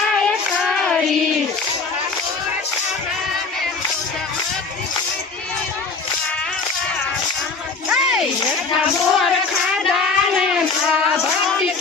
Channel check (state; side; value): quieter; right; 4.3 dB